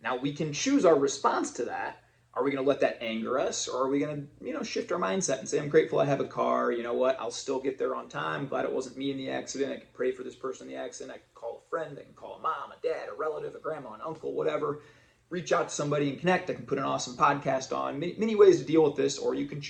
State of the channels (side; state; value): both; identical; correlation 1.00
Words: Now we can choose our response to that. Are we going to let that anger us, or are we going to, shift our mindset and say, I'm grateful I have a car. You know what? I'll still get there on time. Glad it wasn't me in the accident. I can pray for this person in the accident. I can call a friend. I can call a mom, a dad, a relative, a grandma, an uncle, whatever. Reach out to somebody and connect. I can put an awesome podcast on. Many ways to deal with this, or you can